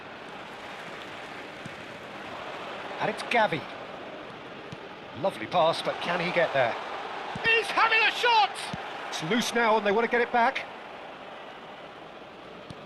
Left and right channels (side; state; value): both; identical; correlation 1.00